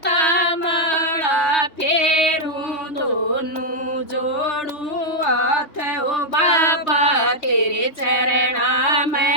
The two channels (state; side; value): late; right; 3.2 ms